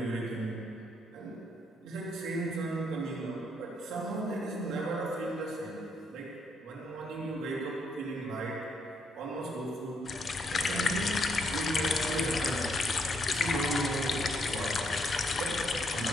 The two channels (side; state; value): both; normal; correlation 0.74